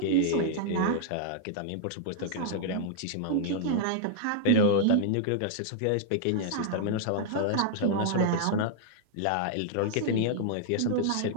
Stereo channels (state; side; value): different; both; correlation -0.01